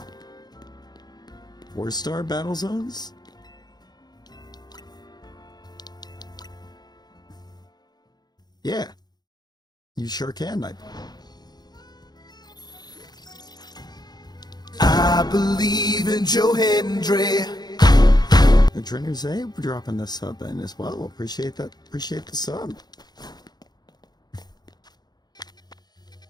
4-star battle zones? Yeah. You sure can, I believe in Joe Hendry. The trainers say we're dropping this sub in as well. Appreciate that. Appreciate the sub.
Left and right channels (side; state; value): right; late; 0.20 ms